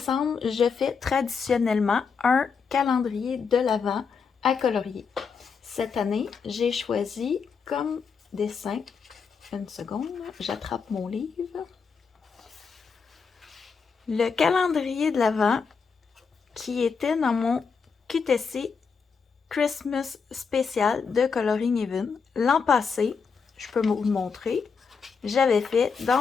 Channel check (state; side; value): quieter; right; 5.6 dB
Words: je fais traditionnellement un calendrier de l'Avent à colorier. Cette année, j'ai choisi comme dessin. Une seconde, j'attrape mon livre. Le calendrier de l'Avent qui était dans mon QTC Christmas spécial de Coloring Even. L'an passé, je peux vous le montrer, j'avais fait